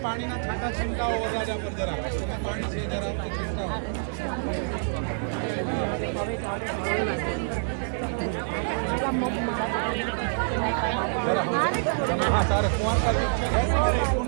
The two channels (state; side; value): silent; left; 60 dB below the other